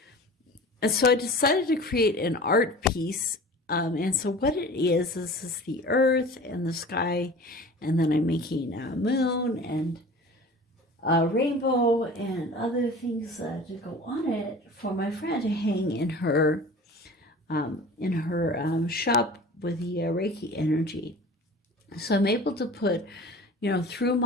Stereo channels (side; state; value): both; normal; correlation 0.40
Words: and so I decided to create an art piece. And so what it is the earth and the sky, and then I'm making a moon and a rainbow and other things to go on it for my friend to hang in her shop with the Reiki energy. So I'm able to put, through